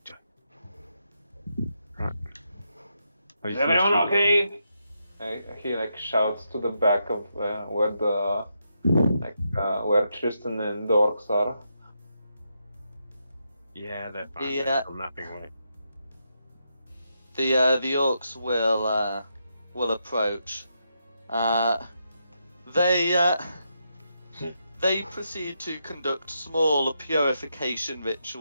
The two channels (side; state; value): both; inverted; correlation -0.82